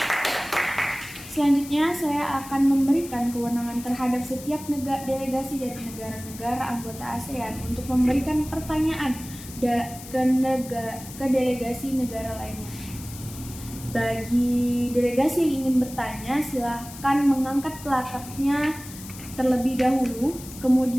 Selanjutnya saya akan memberikan kewenangan terhadap setiap delegasi dari negara-negara anggota ASEAN untuk memberikan pertanyaan ke delegasi negara lainnya. Bagi delegasi yang ingin bertanya, silahkan mengangkat plakatnya terlebih dahulu,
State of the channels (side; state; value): left; noise; hiss, 15 dB below the sound